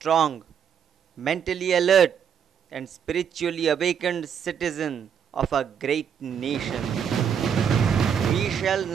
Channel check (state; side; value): quieter; left; 7.8 dB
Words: mentally alert, and spiritually awakened citizens of a great nation. We shall